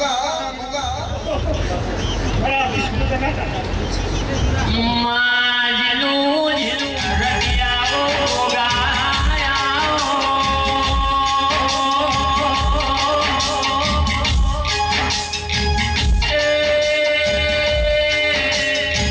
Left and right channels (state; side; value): identical; both; correlation 1.00